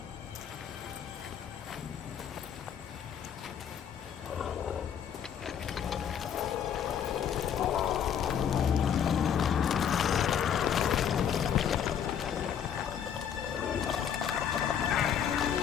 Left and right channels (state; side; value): quieter; right; 8.6 dB